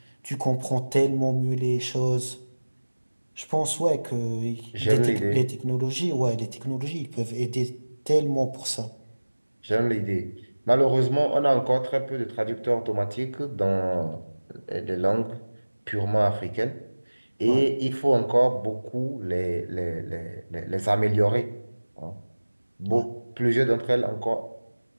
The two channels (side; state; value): both; inverted; correlation -1.00